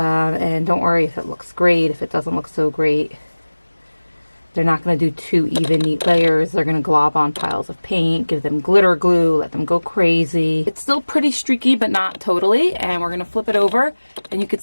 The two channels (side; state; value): both; inverted; correlation -1.00